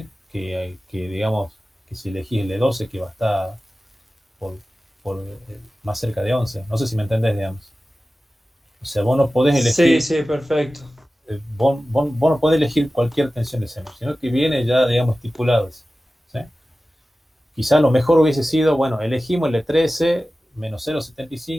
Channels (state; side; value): normal; both; correlation 0.96